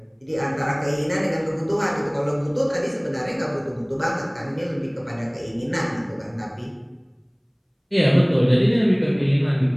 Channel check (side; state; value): both; identical; correlation 1.00